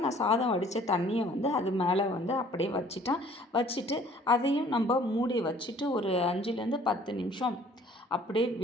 நான் சாதம் வடித்த தண்ணியை வந்து அது மேலே வந்து அப்படியே வச்சுட்டேன். வச்சுட்டு அதையும் நம்ம மூடி வச்சுட்டு ஒரு 5லேருந்து 10 நிமிஷம் அப்படியே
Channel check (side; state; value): both; normal; correlation 0.55